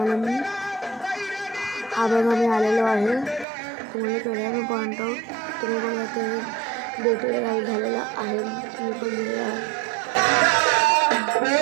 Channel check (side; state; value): left; drops out; at 3.5 s